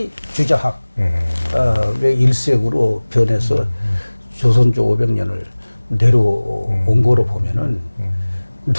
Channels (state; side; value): inverted; both; correlation -1.00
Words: 주자학 의 일색으로 변해서 조선조 500년을 내려온 거로 보면은